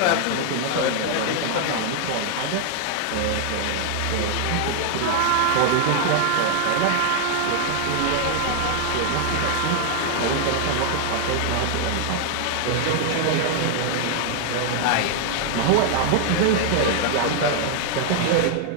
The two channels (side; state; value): both; different; correlation 0.00